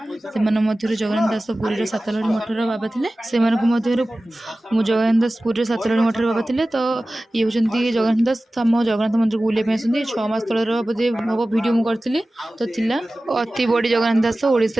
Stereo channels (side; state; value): both; normal; correlation 0.97